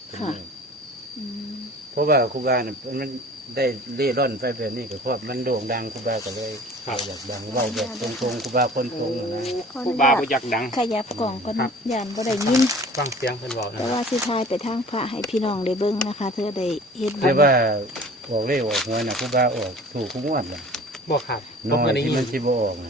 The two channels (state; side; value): normal; both; correlation 0.45